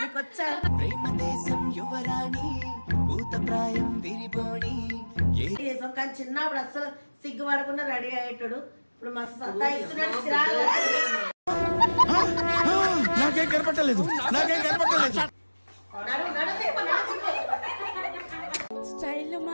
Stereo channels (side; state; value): both; inverted; correlation -1.00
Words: కానీ చిన్నప్పుడు అసలు సిగ్గుపడకుండా రెడీ అయ్యేటాడు. ఇప్పుడు మస్తు సత్తాయిస్తున్నాడు. నాకేం కనపట్టలేదు. స్టైల్